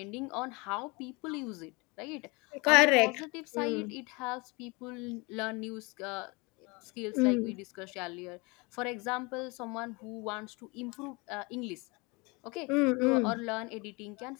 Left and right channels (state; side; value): quieter; right; 27.6 dB